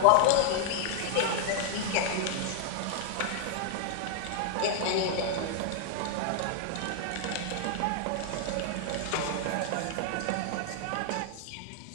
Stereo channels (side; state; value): both; different; correlation 0.00